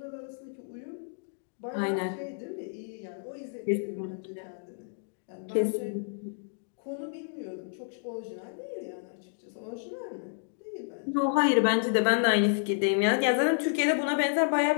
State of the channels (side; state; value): right; silent; digital silence